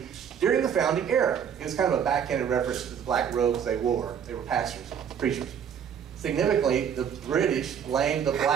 during the founding era. It was kind of a backhanded reference to the black robes they wore. They were pastors, preachers. Significantly, the British blamed the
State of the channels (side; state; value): left; quieter; 8.1 dB